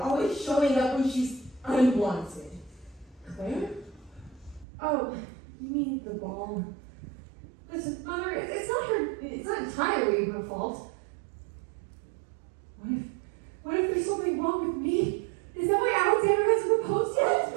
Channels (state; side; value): drops out; left; at 4.7 s